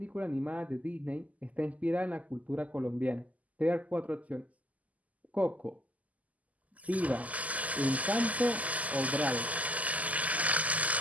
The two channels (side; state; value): left; late; 0.074 ms